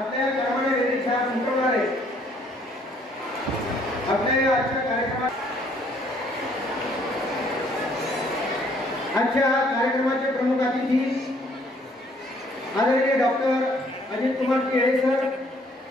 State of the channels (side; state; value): both; normal; correlation 0.63